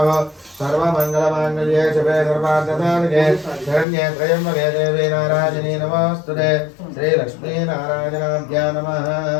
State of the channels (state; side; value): drops out; right; at 3.9 s